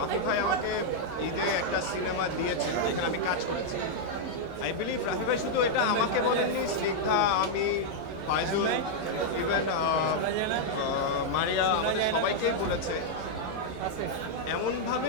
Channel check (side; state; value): both; normal; correlation -0.02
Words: ভাই আমাকে ঈদে একটা সিনেমা দিয়েছেন যেখানে আমি কাজ করেছি। আই বিলিভ রাফি ভাই শুধু এটা আমাকে বলেননি, স্নিগ্ধা, আমি, ফাইজুল, ইভেন মারিয়া, আমাদের সবাইকেই বলেছে,